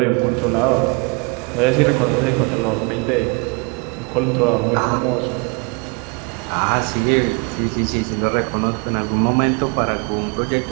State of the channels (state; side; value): quieter; left; 32.2 dB